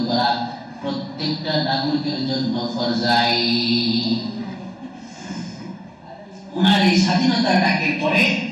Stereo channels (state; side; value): identical; both; correlation 1.00